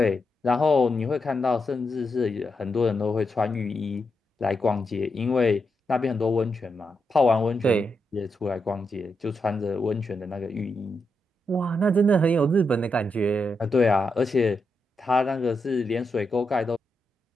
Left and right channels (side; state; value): both; normal; correlation 0.84